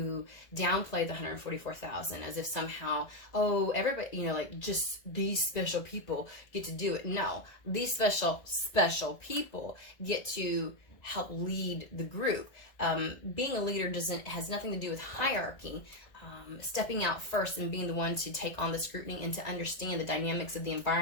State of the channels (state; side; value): late; right; 2.0 ms